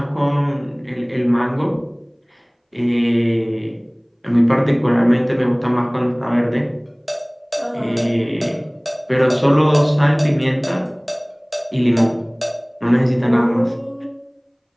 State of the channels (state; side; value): identical; both; correlation 1.00